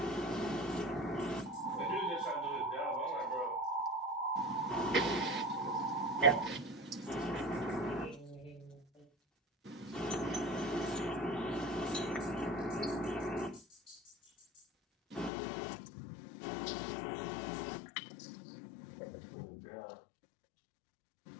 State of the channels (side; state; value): right; drops out; at 15.3 s